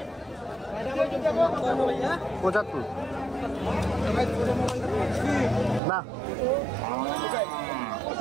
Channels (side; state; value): left; drops out; at 5.8 s